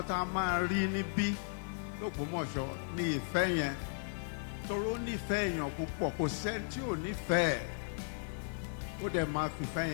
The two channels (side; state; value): right; silent; digital silence